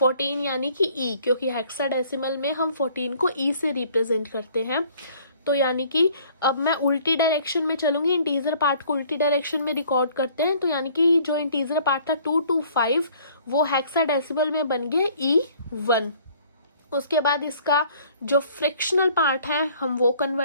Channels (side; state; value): both; inverted; correlation -0.56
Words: यानी कि ई, क्योंकि हेक्साडेसिमल में हम 14 को ई से रिप्रेजेंट करते हैं। तो यानी कि अब मैं उल्टी डायरेक्शन में चलूंगी, इंटीजर पार्ट को उल्टी डायरेक्शन में रिकॉर्ड करते हैं। तो यानी कि जो इंटीजर पार्ट था 2 to 5 वो हेक्साडेसिमल में बन गया E1। उसके बाद इसका जो फ्रैक्शनल पार्ट है हम वो